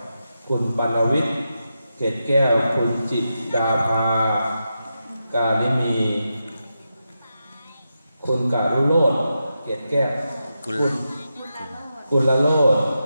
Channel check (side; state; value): both; inverted; correlation -0.88